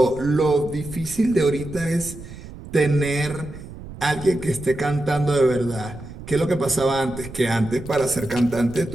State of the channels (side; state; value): right; noise; rumble, 14 dB below the sound